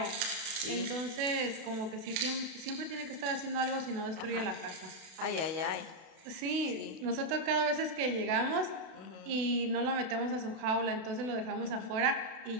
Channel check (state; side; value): late; left; 32 ms